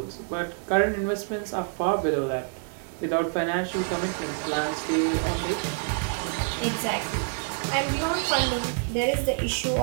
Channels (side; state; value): left; silent; 57 dB below the other